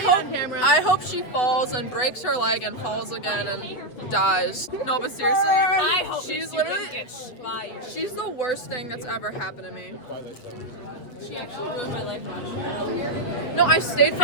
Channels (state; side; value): late; right; 7.9 ms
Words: hope she falls and breaks her leg and falls again and dies. No, but seriously, I hope she's she literally. doesn't get fired. She's the worst thing that's ever happened to me. She actually ruined my life. No, I stayed for